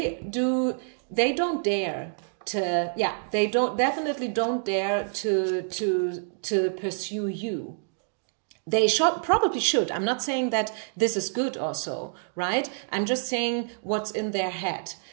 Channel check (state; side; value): silent; left; digital silence